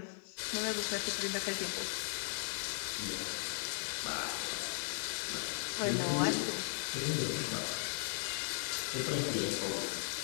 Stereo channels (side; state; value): right; silent; digital silence